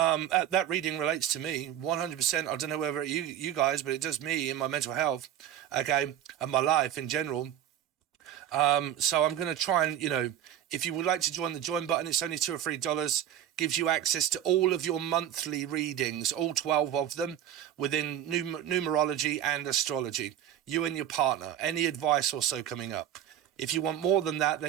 reading relates to me 100%. I don't know whether you guys, but it does me in my mental health, okay, and my life in general. So I'm going to try and, you know, if you would like to join the join button, it's only $2 or $3, gives you access to all of your monthly readings, all 12 of them within numerology and astrology, you and your partner, any advice also coming up. If you want more than that,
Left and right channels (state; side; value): quieter; left; 10.9 dB